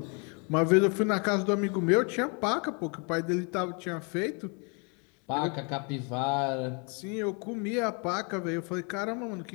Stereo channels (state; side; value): quieter; right; 35.2 dB